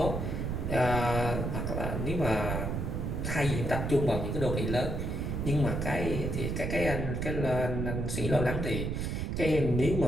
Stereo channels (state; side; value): noise; right; rumble, 1 dB below the sound